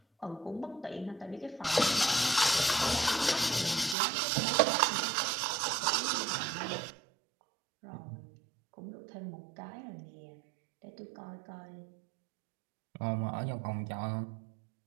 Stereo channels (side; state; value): left; drops out; at 4.0 s